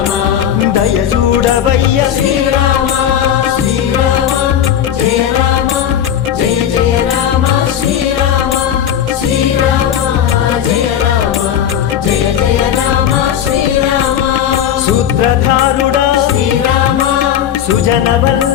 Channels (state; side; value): quieter; right; 9.7 dB